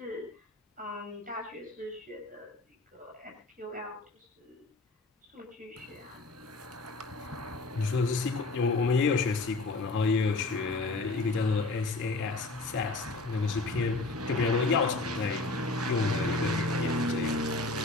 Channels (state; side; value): quieter; right; 3.2 dB